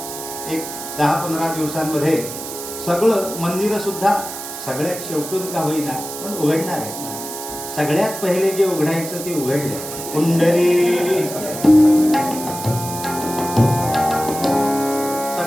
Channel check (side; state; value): right; noise; hiss, 9 dB below the sound